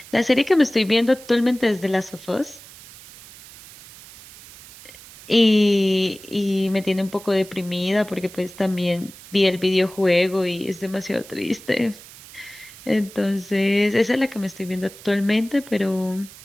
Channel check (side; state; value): right; noise; hiss, 19 dB below the sound